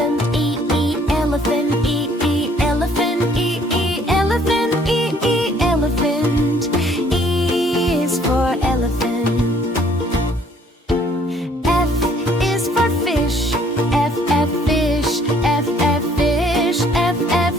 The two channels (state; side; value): normal; both; correlation 0.61